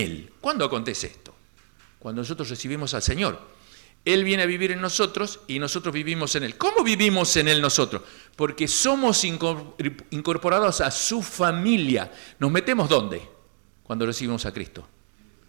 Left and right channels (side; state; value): left; silent; digital silence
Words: ¿Cuándo acontece esto? Cuando nosotros recibimos al Señor. Él viene a vivir en nosotros y nosotros vivimos en Él. ¿Cómo vivimos en Él nosotros? Porque somos incorporados a su familia. ¿Nos metemos dónde? Cuando recibimos a Cristo.